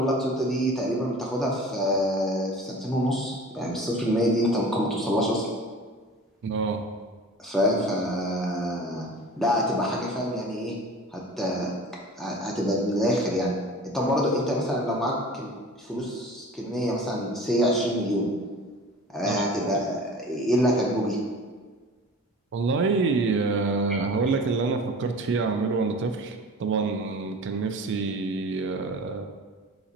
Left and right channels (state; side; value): normal; both; correlation 0.40